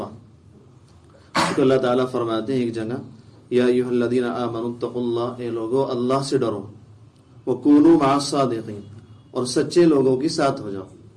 اس کو اللہ تعالیٰ فرماتے ہیں ایک جگہ، یا ایھا الذین آمنوا اتقوا اللہ، اے لوگو اللہ سے ڈرو، وکونوا مع الصادقین، اور سچے لوگوں کے ساتھ ہو جاؤ.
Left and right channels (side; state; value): both; identical; correlation 1.00